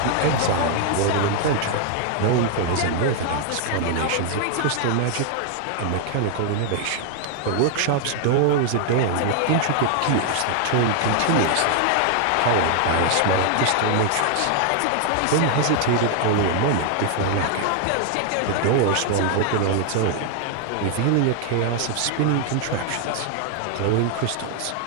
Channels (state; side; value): different; both; correlation 0.00